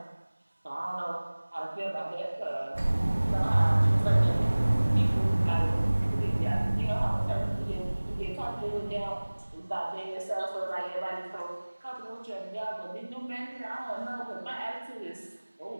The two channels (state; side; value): inverted; both; correlation -1.00